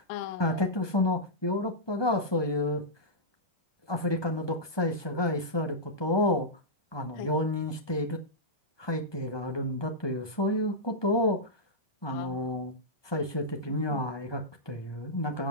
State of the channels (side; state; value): right; late; 1.2 ms